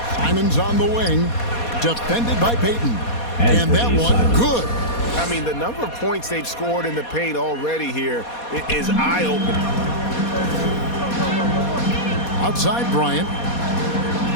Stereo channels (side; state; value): right; late; 4.2 ms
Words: Simons on the wing. Defended by Payton. And that one, good. I mean, the number of points they've scored in the paint already here is eye-opening. Outside Bryant.